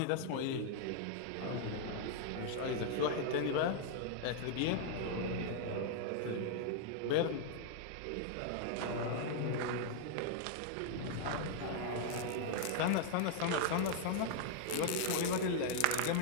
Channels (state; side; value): different; both; correlation 0.00